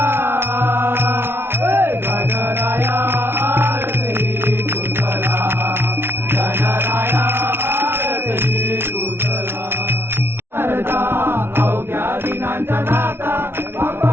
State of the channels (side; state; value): left; late; 0.11 ms